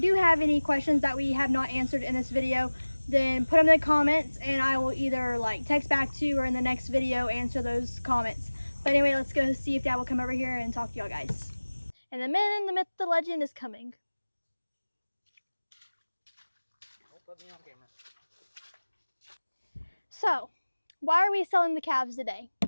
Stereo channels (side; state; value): both; inverted; correlation -1.00